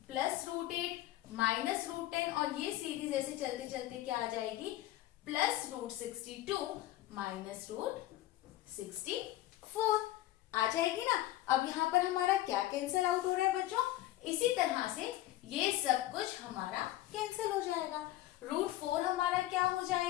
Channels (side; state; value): right; quieter; 15.4 dB